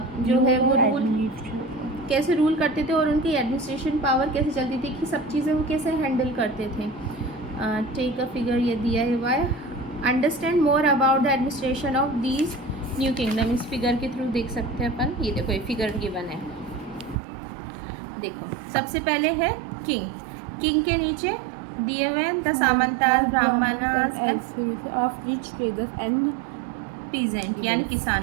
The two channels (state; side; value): drops out; left; at 17.2 s